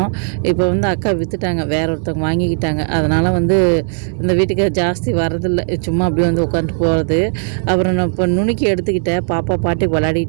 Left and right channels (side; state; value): left; silent; digital silence